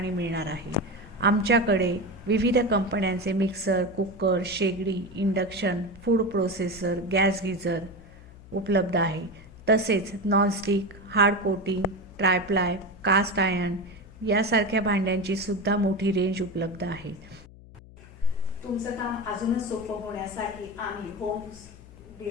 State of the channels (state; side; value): noise; left; hum, 20 dB below the sound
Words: मिळणार आहे. आमच्याकडे विविध कंपन्यांचे मिक्सर, कुकर, शेगडी, induction, food processor, gas geyser उपलब्ध आहे. तसेच nonstick, hard coating, triply, cast iron यासारख्या भांड्यांची सुद्धा मोठी रेंज उपलब्ध आहे. तुमचं काम अजूनच सोपं होण्यासाठी आम्ही होम